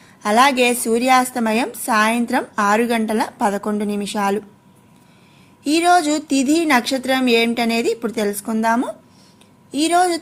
అలాగే సూర్యాస్తమయం సాయంత్రం 6:11. ఈరోజు తిథి నక్షత్రం ఏమిటనేది ఇప్పుడు తెలుసుకుందాము. ఈరోజు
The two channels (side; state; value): both; identical; correlation 1.00